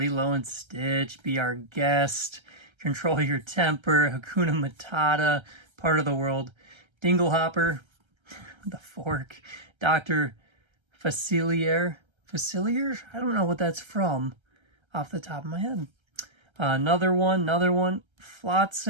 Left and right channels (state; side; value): late; left; 1.3 ms